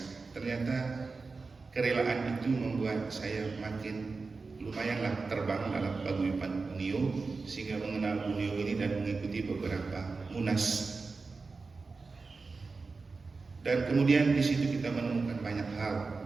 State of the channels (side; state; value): left; quieter; 4.2 dB